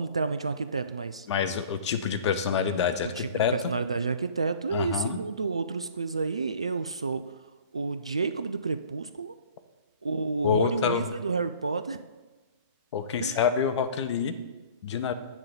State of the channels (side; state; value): both; inverted; correlation -0.48